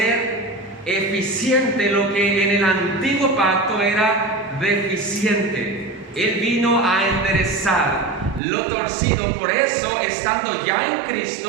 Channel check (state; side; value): drops out; left; at 8.4 s